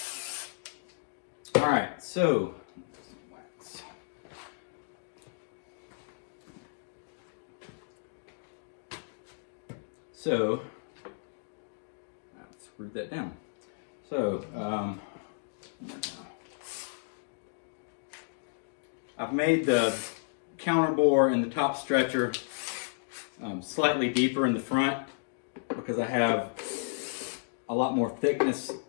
All right, so wax. So I've screwed that down. So I've made the counter bore and the top stretcher slightly deeper in the front because I have a lot more thickness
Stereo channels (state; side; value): silent; right; digital silence